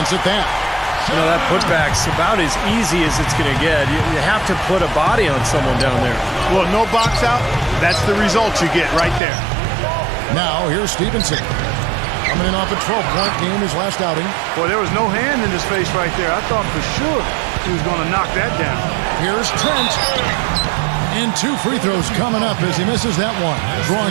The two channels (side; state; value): left; drops out; at 9.2 s